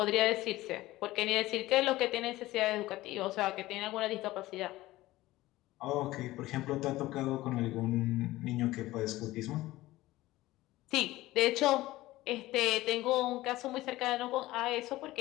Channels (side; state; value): right; quieter; 17.4 dB